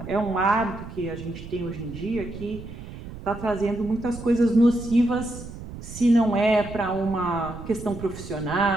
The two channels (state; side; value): noise; right; rumble, 12 dB below the sound